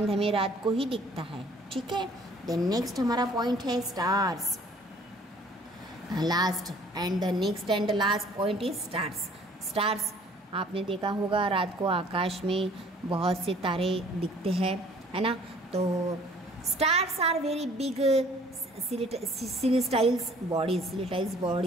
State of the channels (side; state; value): both; normal; correlation 0.55